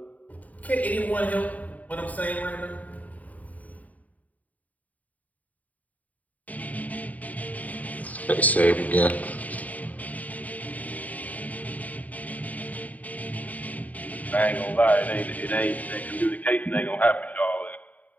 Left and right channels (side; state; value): right; late; 0.073 ms